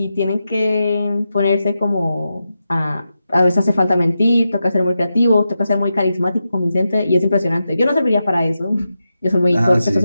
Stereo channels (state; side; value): inverted; both; correlation -0.89